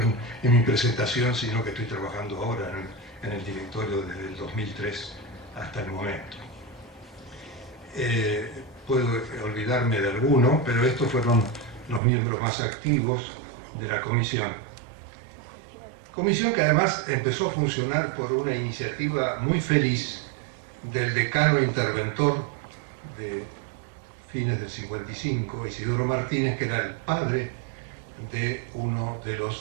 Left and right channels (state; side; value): drops out; left; at 12.0 s